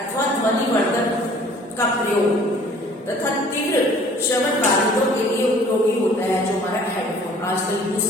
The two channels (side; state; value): both; normal; correlation 0.53